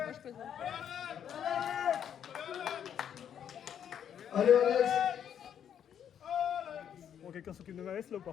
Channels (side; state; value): right; quieter; 9.0 dB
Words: moi je présente. Allez, Alex. Bon, quelqu'un s'occupe de ma veste là ou